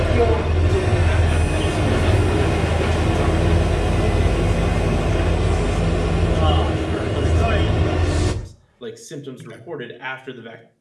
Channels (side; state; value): both; identical; correlation 1.00